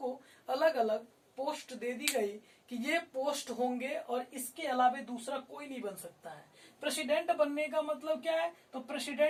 अलग अलग पोस्ट दे दी गई कि ये पोस्ट होंगे और इसके अलावा दूसरा कोई नहीं बन सकता है। प्रेसिडेंट बनने का मतलब क्या है, तो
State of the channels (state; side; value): identical; both; correlation 1.00